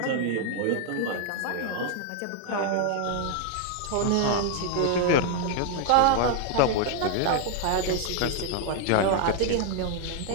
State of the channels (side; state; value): both; different; correlation 0.00